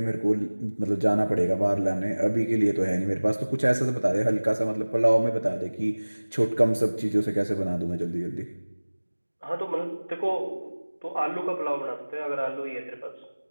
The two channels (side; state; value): both; inverted; correlation -1.00